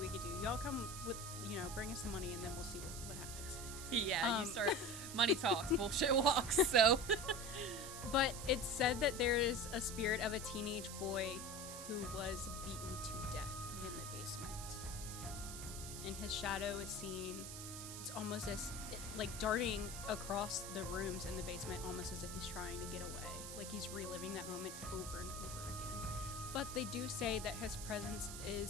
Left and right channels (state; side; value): noise; right; hiss, 8 dB below the sound